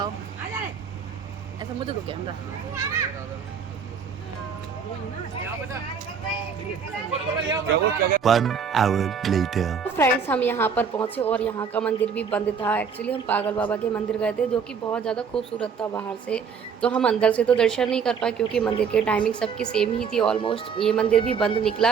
ऐसा मुझे को camera. One hour later. Friends हम यहाँ पर पहुँचे और यहाँ का मंदिर भी बंद था। एक्चुअली हम पागल बाबा के मंदिर गए थे, जो कि बहुत ज़्यादा खूबसूरत था बाहर से। तो हम अंदर से तो दर्शन नहीं कर पाए, क्योंकि मंदिर की टाइमिंग सबकी सेम ही थी ऑलमोस्ट। ये मंदिर भी बंद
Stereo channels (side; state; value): left; quieter; 6.4 dB